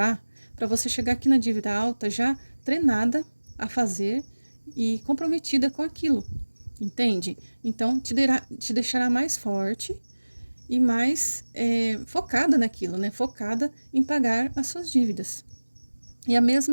para você chegar aqui na dívida alta já treinada a fazer e comprometida com aquilo, entende? Então, te deixará mais forte e mais focada naquilo, né? Focada em pagar as suas dívidas. E a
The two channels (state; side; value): inverted; both; correlation -1.00